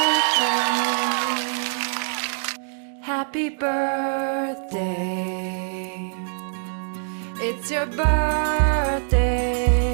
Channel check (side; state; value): left; silent; digital silence